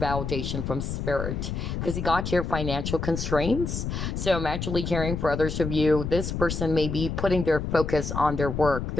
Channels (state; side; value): noise; left; rumble, 4 dB below the sound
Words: from spirit. Because you got your financial constraints. So I'm actually caring for others of you. This person may be putting their focus on their work,